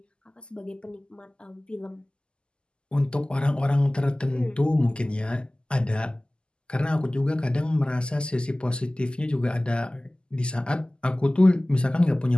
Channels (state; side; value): late; right; 0.049 ms